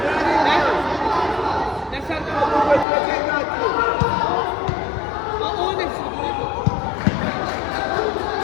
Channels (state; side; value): drops out; right; at 2.9 s